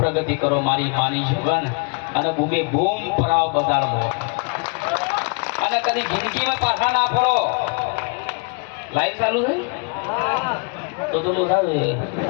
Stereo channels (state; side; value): quieter; right; 36.1 dB